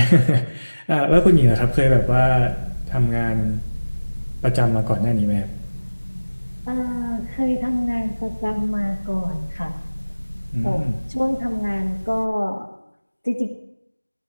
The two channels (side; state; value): both; inverted; correlation -1.00